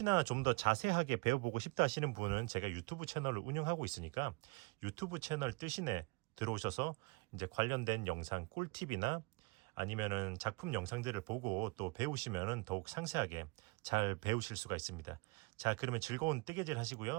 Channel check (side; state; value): left; quieter; 27.6 dB